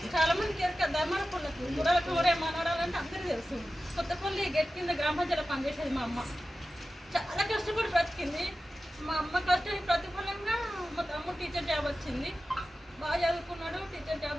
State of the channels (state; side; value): normal; both; correlation 0.94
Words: చాలామందికి ఎరక ధర్మపుల్లకు గుర్రాలకు ఊరే మనవడాలంటే అందరికీ తెలుసు. కొత్తపల్లి గెట్ కింద గ్రామ పంచాయతీలో పనిచేసేది మా అమ్మ. చాలా కష్టపడి బ్రతికింది. మా అమ్మ కష్టానికి ప్రతిఫలంగా మా తమ్ముడు టీచర్ జాబ్ వచ్చింది. బాగా చదువుకున్నాడు, టీచర్ జాబ్